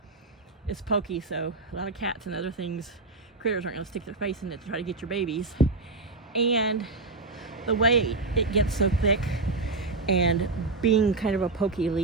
it's pokey, so a lot of cats and other critters aren't going to stick their face in it to try to get your babies. And the way it gets so thick and being kind of a pokey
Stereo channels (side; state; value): left; quieter; 3.6 dB